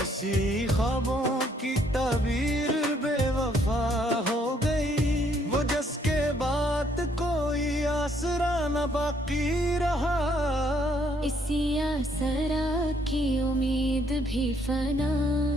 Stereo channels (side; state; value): both; normal; correlation 0.68